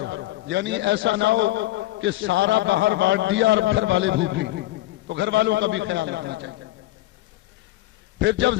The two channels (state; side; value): quieter; right; 16.8 dB